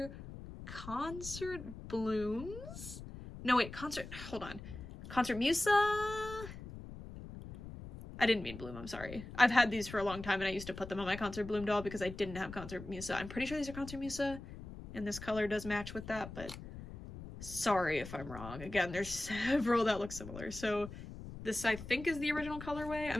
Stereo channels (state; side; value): noise; left; rumble, 12 dB below the sound